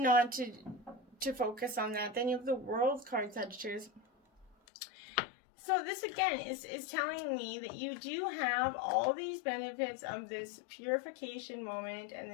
not to focus on that. Then you have the World card, Sagittarius. So this again is telling me that you do have all these benefits of this purification moment and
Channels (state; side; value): drops out; right; at 4.5 s